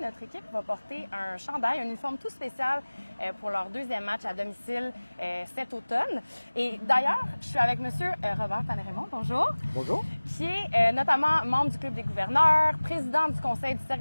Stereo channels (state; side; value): inverted; both; correlation -1.00